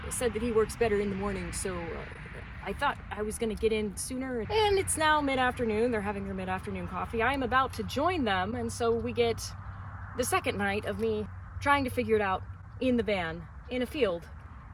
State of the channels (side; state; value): both; identical; correlation 1.00